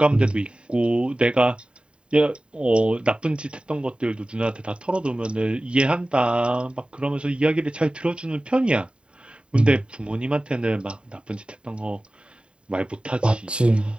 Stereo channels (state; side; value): late; left; 0.053 ms